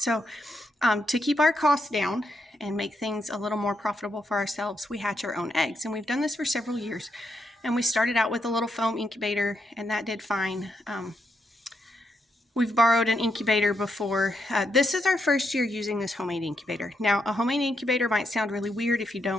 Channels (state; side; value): normal; both; correlation 0.81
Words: to keep our costs down and make things a little more profitable for ourselves, we hatch our own eggs, and we've done this for several years. And we started out with a little foam incubator, and that did fine. We've borrowed an incubator before. This is our first year using this homemade incubator. Now, a homemade incubator might sound really weird if you